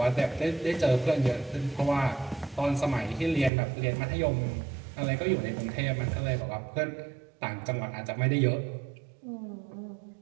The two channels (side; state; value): left; drops out; at 3.5 s